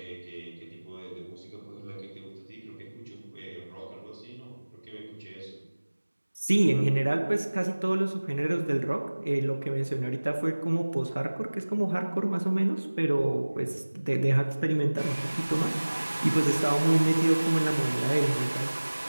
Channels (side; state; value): both; inverted; correlation -1.00